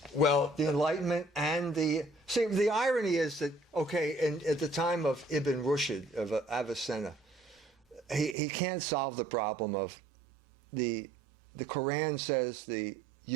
Enlightenment and the... See, the irony is that, at the time of Ibn Rushd, of Avicenna, he can't solve the problem of the Quran says the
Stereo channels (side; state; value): left; drops out; at 8.3 s